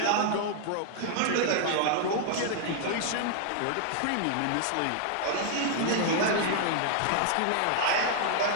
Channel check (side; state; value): both; different; correlation -0.01